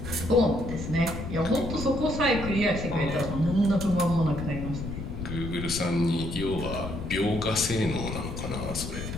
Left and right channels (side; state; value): left; noise; rumble, 6 dB below the sound